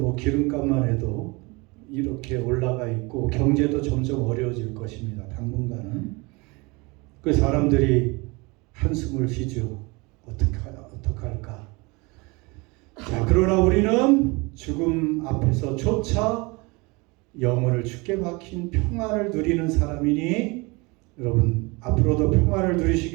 기름값만 해도 이렇게 올라가 있고 경제도 점점 어려워질 것입니다. 당분간은. 그 사람들이 한숨을 쉬죠. 어떡할까. 자, 그러나 우리는 죽음 앞에서조차 영혼을 주께 박힌 평안을 누리는 사람이니 여러분, 앞으로도 평안을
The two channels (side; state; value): left; quieter; 26.4 dB